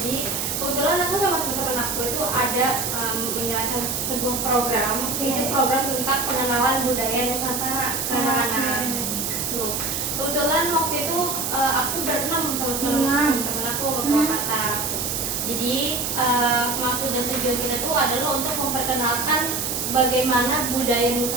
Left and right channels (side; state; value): right; noise; hiss, 1 dB below the sound